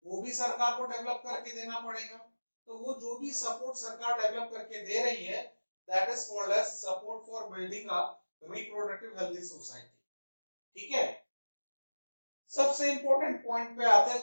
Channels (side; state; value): both; inverted; correlation -1.00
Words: वो भी सरकार को डेवलप करके देना पड़ेगा. तो वो जो भी सपोर्ट सरकार डेवलप करके दे रही है that is called as support for building up reproductive healthy society. ठीक है, सबसे इंपॉर्टेंट पॉइंट पे आते